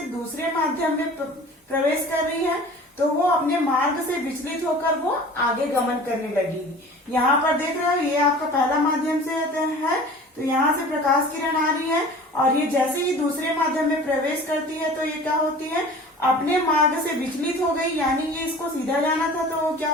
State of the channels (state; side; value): normal; both; correlation 0.42